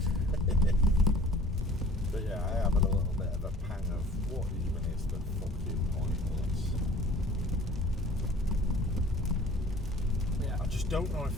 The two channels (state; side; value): normal; both; correlation 0.48